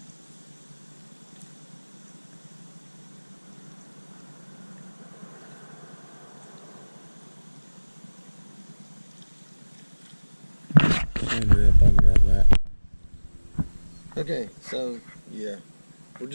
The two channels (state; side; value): inverted; both; correlation -1.00